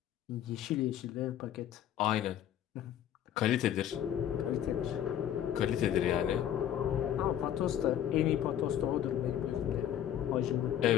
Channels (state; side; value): quieter; right; 10.7 dB